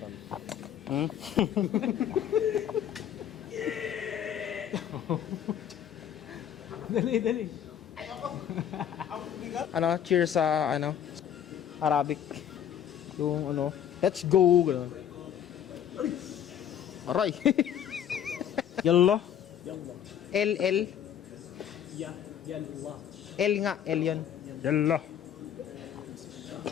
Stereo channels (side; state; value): right; quieter; 9.5 dB